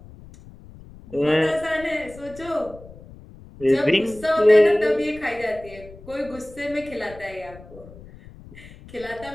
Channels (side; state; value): left; noise; rumble, 19 dB below the sound